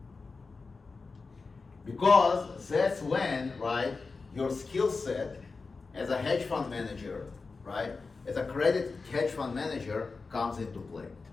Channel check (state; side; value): quieter; right; 4.2 dB